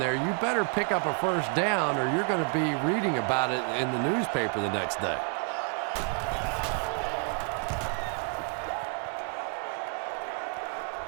you better pick up a first down or you're going to be reading about it in the newspaper the next day.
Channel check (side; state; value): left; quieter; 37.2 dB